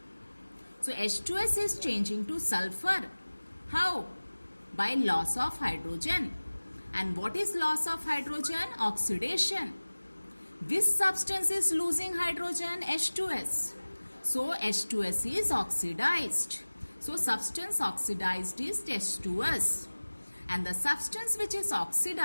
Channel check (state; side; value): inverted; both; correlation -1.00